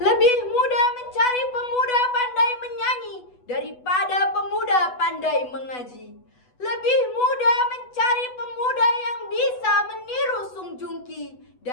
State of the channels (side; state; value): right; late; 8.1 ms